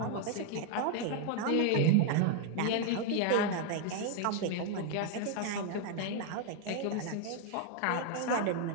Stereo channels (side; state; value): both; different; correlation 0.01